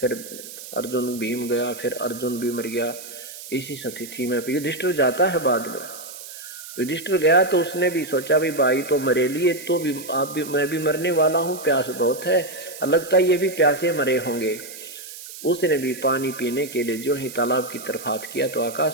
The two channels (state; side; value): noise; right; hiss, 13 dB below the sound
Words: अर्जुन भीम गया, फिर अर्जुन भी मर गया। इसी स्थिति में युधिष्ठिर जाता है बाद में। युधिष्ठिर गया तो उसने भी सोचा भाई तो मरे लिए, तो भी आप भी मैं भी मरने वाला हूँ, प्यास बहुत है, लगता है ये भी प्यासे मरे होंगे। उसने भी पानी पीने के लिए जो ही तालाब की तरफ हाथ किया तो